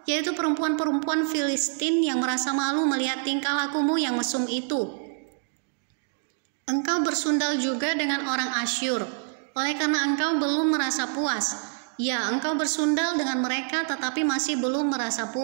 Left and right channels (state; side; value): silent; left; 61 dB below the other